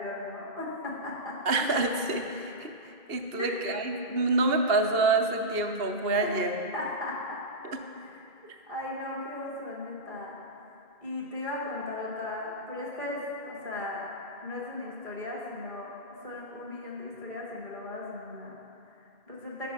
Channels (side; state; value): left; late; 2.7 ms